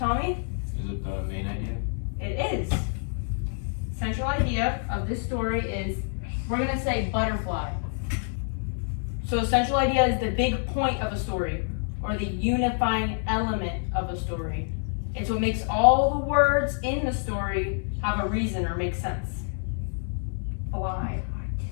Is it the main idea? It is. Central idea of this story is, we're going to say butterfly. So a central idea is the big point of a story, or the unifying element of a story. It's what makes all the words in the story have a reason or make sense. Fly.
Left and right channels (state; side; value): silent; right; 60 dB below the other